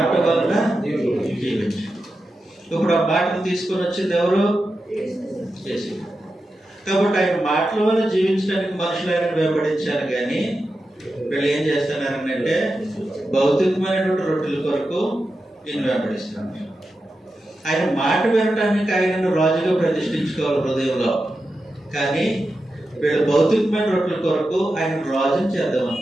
వలన జీవించు. ఇప్పుడు ఆ మాటను తీసుకొని వచ్చింది ఎవరు? యేసు. కాబట్టి ఆయన మాటల వల్ల జీవించడానికి మనుషులు ఆయన వెంబడించారు. కానీ వీళ్ళు ఏం చేస్తున్నారంటే భౌతికమైనటువంటి రొట్టెల కొరకు ఈయన వెంబడిస్తున్నారు. ఆయన మాట వినటానికి ఆయనను రాజుగా ప్రతిష్ఠించుకోవాలి హృదయంలో. కానీ వీళ్ళు భౌతికమైన రొట్టెల కొరకు ఆయన రాజుని చేద్దాం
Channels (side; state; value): both; normal; correlation 0.90